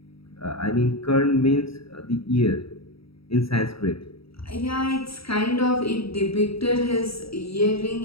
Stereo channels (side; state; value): right; late; 0.76 ms